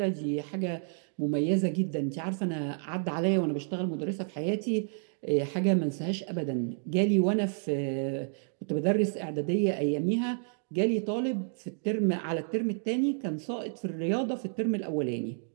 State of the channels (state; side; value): silent; left; 58 dB below the other